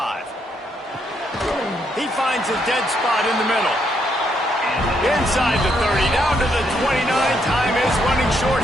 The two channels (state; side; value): normal; both; correlation 0.75